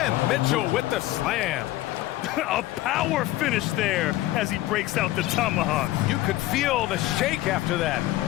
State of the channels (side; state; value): right; quieter; 16.4 dB